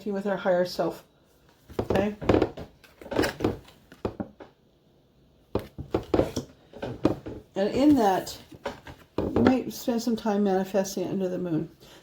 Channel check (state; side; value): identical; both; correlation 1.00